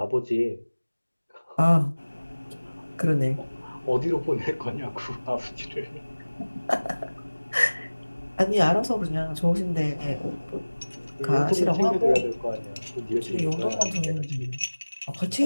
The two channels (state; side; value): inverted; both; correlation -1.00